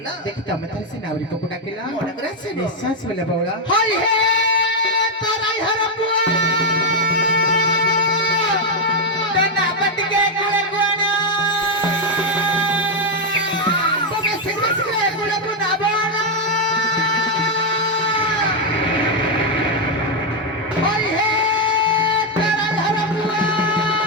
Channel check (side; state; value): both; normal; correlation 0.03